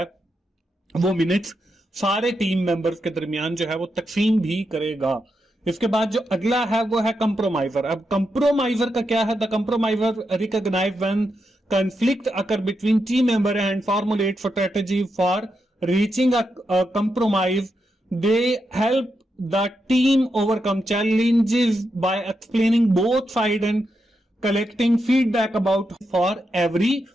वो मिनट्स सारे टीम मेंबर्स के दरमियान जो है वो तकसीम भी करेगा। इसके बाद जो अगला है वो है कंप्रोमाइजर। अब कंप्रोमाइजर का क्या है? The compromiser recognize when conflict occur between team member and formulate strategy for reaching a compromise. They help the team overcome challenges by explaining both sides and collecting feedback about for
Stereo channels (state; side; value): normal; both; correlation 0.85